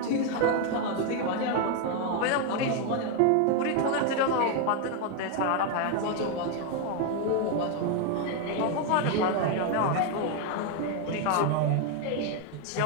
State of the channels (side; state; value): both; different; correlation 0.01